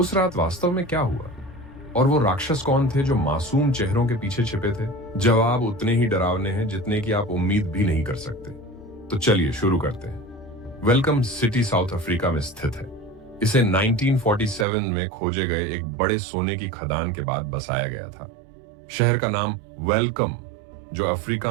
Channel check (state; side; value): drops out; left; at 14.7 s